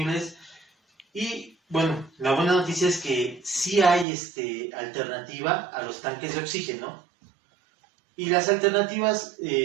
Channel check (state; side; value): drops out; left; at 4.0 s